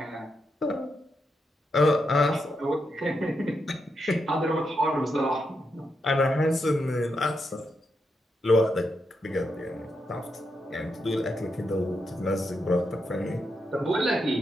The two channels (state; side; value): normal; both; correlation 0.83